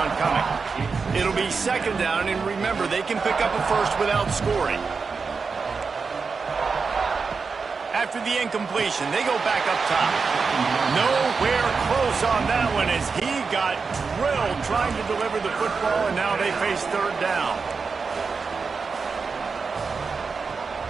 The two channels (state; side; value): quieter; left; 5.0 dB